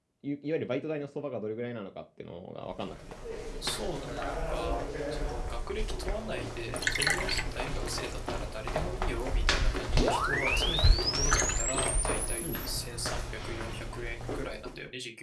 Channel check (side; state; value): both; identical; correlation 1.00